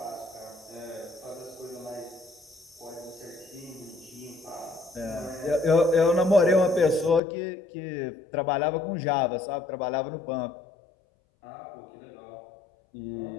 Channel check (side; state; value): right; drops out; at 7.2 s